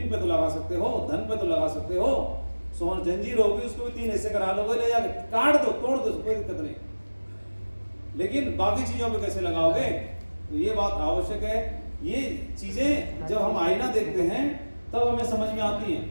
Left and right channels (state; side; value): inverted; both; correlation -1.00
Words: पे तो लगा सकते हो, धन पे तो लगा सकते हो, सोन जंजीर होगी उसको भी 3 हिस्से करा लोगे, ले जाके काट दो, तोड़ दो, कोई दिक्कत नहीं। लेकिन बाकी चीजों पे कैसे लगाओगे, तो ये बात आवश्यक है। ये चीजें जब हम आईना देखते हैं तब हमें समझ में आती हैं।